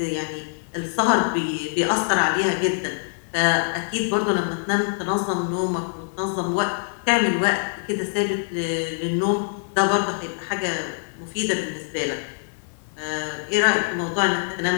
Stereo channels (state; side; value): silent; right; digital silence